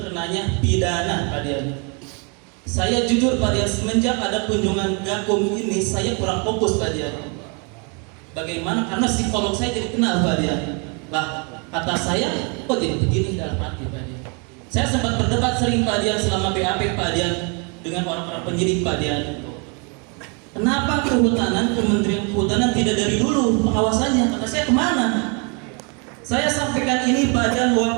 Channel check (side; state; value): left; quieter; 34.3 dB